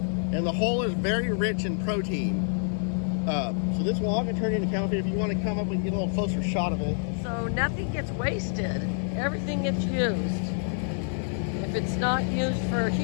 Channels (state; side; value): silent; right; 60 dB below the other